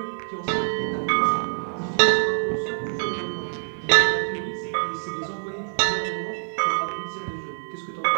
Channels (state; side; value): silent; left; 56 dB below the other